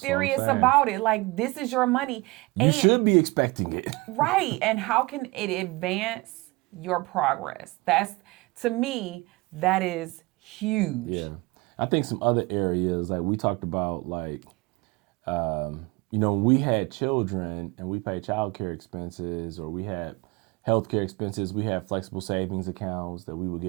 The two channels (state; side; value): quieter; left; 23.5 dB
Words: about it. Like this is your money. You should be expecting it. Right. And how can it advance your progress? That's, to me, that is huge. Yeah. I think some other areas, like we talked about, like, when we had children and we paid childcare expenses or we had healthcare expenses, we had flexible savings accounts that we would